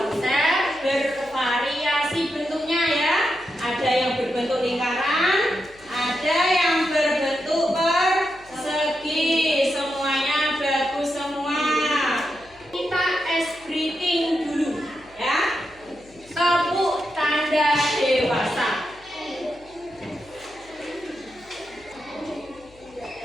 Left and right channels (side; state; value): left; noise; hum, 26 dB below the sound